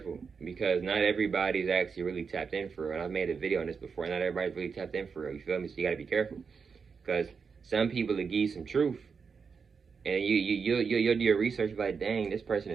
because not everybody's actually really tapped in for real. And I've made a video on this before. Not everybody's really tapped in for real. You feel me? So you got to be careful, because some people will give you some truth, and you'll do your research like, dang, this person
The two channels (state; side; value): quieter; left; 5.6 dB